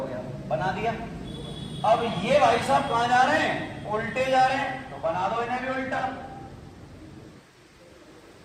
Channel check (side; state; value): both; identical; correlation 1.00